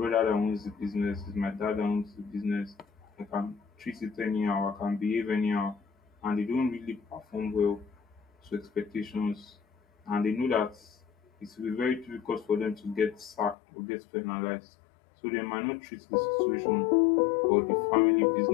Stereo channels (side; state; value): right; drops out; at 13.6 s